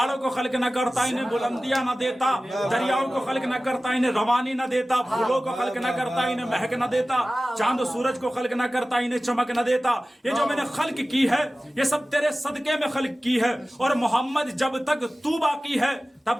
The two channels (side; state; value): both; normal; correlation 0.96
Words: کو خلق نہ کرتا، انہیں بلندیاں نہ دیتا، دریاؤں کو خلق نہ کرتا، انہیں روانی نہ دیتا، پھولوں کو خلق نہ کرتا، انہیں مہک نہ دیتا، چاند و سورج کو خلق نہ کرتا، انہیں چمک نہ دیتا۔ یہ جو میں نے خلق کی ہے یہ سب تیرے صدقے میں خلق کی ہے، اور محمد جب تک تو باقی ہے